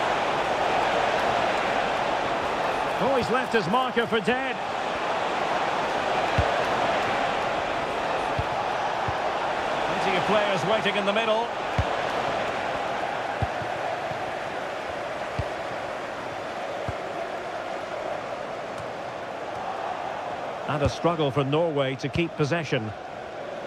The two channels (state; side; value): identical; both; correlation 1.00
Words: Oh, he's left his marker for dead. players waiting in the middle. And a struggle for Norway to keep possession.